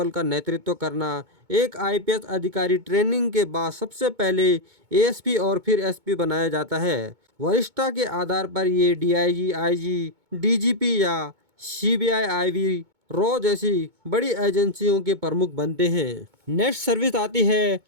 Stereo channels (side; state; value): left; late; 2.2 ms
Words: का नेतृत्व करना। एक आईपीएस अधिकारी ट्रेनिंग के बाद सबसे पहले एएसपी और फिर एसपी बनाया जाता है। वरिष्ठता के आधार पर ये डीआईजी, आईजी, डीजीपी या सीबीआई, आईवी, रॉ जैसी बड़ी एजेंसियों के प्रमुख बनते हैं। नेक्स्ट सर्विस आती है